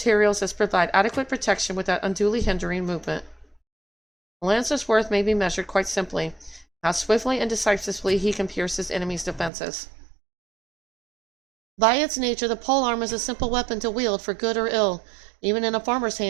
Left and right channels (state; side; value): drops out; left; at 9.5 s